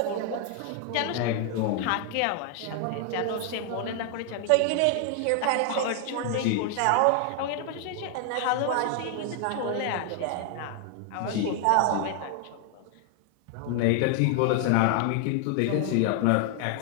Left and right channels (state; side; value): different; both; correlation 0.00